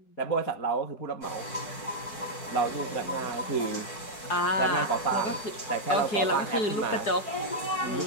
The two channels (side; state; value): right; late; 4.6 ms